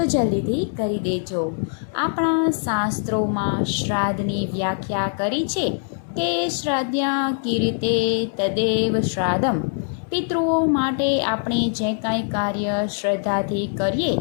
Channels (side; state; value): right; silent; 64 dB below the other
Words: જલ્દીથી કરી દેજો. આપણા શાસ્ત્રોમાં શ્રાદ્ધની વ્યાખ્યા કરી છે કે શ્રાદ્ધ્યા કીર્તે તદેવ શ્રાદ્ધમ. પિતૃઓ માટે આપણે જે કાંઈ કાર્ય શ્રદ્ધાથી કરીએ